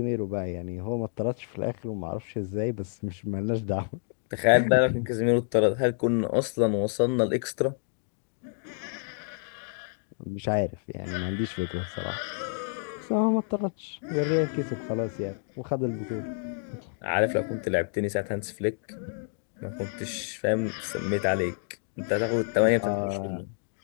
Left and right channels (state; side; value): silent; right; 59 dB below the other